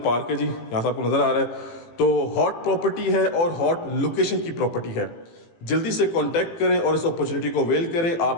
है जी, यहाँ से आपको नज़र आ रहा है। तो हॉट प्रॉपर्टी है और हॉट लोकेशन की प्रॉपर्टी है। जल्दी से कांटेक्ट करें और इस अपॉर्चुनिटी को अवेल करें।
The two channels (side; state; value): right; late; 18 ms